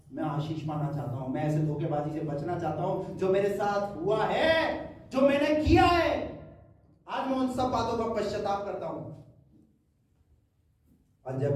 मैं आशीष पाना चाहता हूं, मैं ऐसे धोखेबाजी से बचना चाहता हूं जो मेरे साथ हुआ है, जो मैंने किया है। आज मैं उन सब बातों का पश्चाताप करता हूं। और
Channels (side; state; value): both; identical; correlation 1.00